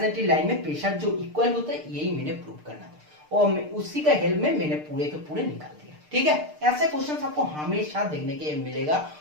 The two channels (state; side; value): late; left; 6.6 ms